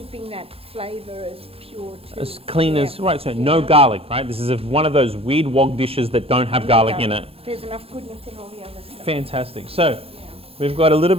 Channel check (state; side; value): late; left; 0.28 ms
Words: that flavour as pure too. as clean as, right, so no garlic, right? This is one of those weird wok dishes that don't have garlic in it. There's enough goodness in all the other stuff. Fantastic. So we've got a little